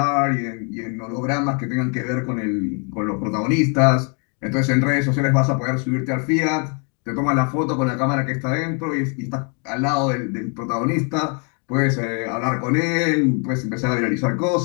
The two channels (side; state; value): right; quieter; 37.2 dB